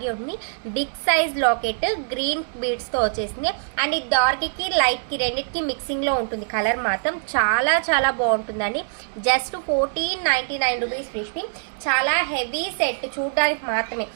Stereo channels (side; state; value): left; silent; digital silence